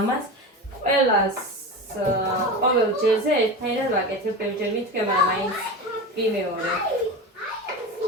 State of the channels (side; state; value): both; normal; correlation 0.26